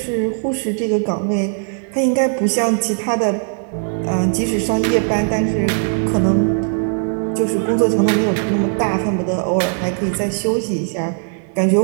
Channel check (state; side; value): silent; left; digital silence